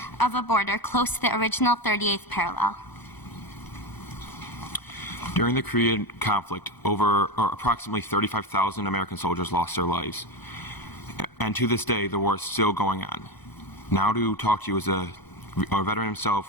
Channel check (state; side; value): late; right; 1.0 ms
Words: of a border close to the original 38th parallel. During the Korean conflict, approximately 35,000 American soldiers lost their lives. And to this day, the war is still going on. Now to talk to you is a veteran